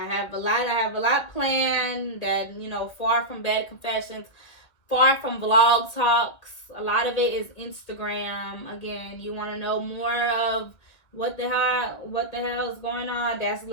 have a lot planned that, far from bad confessions, far from vlog talks. A lot of it is Instagram. Again, you want to know more of what the hell is going on? That's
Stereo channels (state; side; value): late; right; 2.1 ms